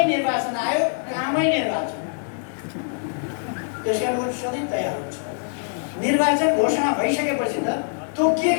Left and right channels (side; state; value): right; silent; digital silence